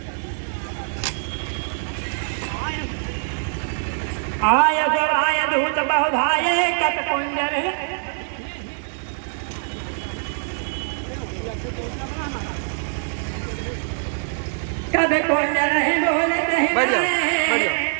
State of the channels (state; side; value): silent; left; digital silence